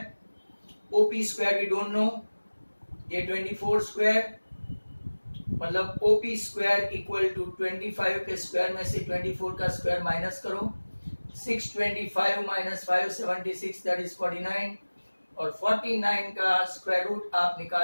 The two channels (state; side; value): inverted; both; correlation -1.00